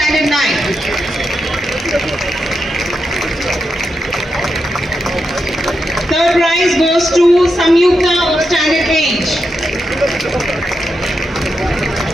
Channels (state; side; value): normal; both; correlation 0.86